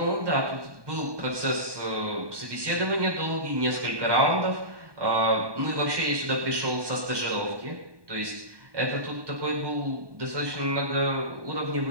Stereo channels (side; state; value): left; late; 1.2 ms